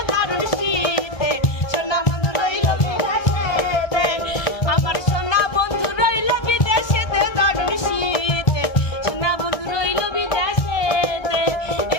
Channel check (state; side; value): late; right; 1.2 ms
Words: দারুণ শীতে সোনা বন্ধু রইল বিদেশেতে আমার সোনা বন্ধু রইল বিদেশেতে দারুণ শীতে সোনা বন্ধু রইল বিদেশেতে